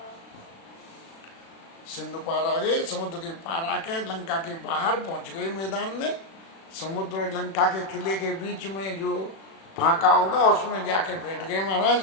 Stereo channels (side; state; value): right; late; 36 ms